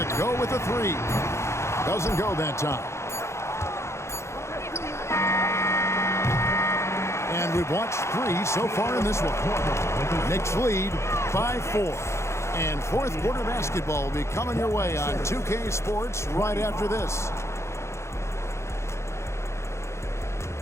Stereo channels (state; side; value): late; right; 0.13 ms